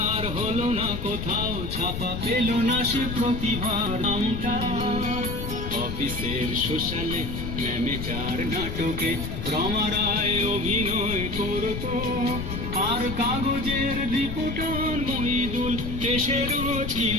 হলো না কোথাও ছাপা, পেল না সে প্রতিভার নামটা। অফিসের সোশ্যালে, ম্যামেচার নাটকে রমারায় অভিনয় করতো, আর কাগজের রিপোর্টার মহিদুল এসে রোজ কি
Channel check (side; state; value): left; noise; rumble, 5 dB below the sound